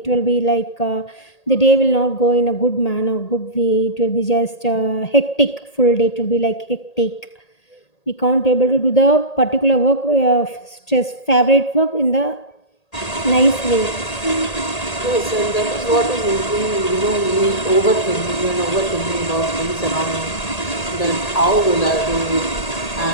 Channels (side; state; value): right; late; 1.8 ms